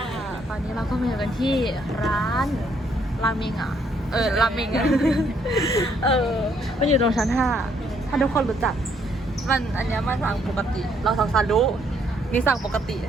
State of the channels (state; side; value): normal; both; correlation 0.69